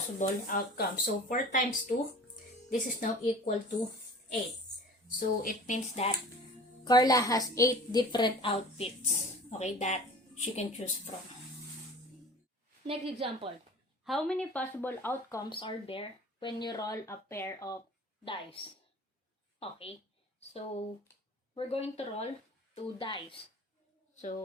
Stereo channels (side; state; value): both; normal; correlation 0.42